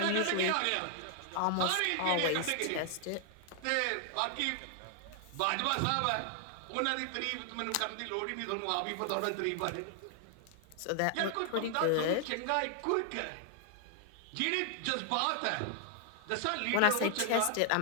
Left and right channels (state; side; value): different; both; correlation 0.00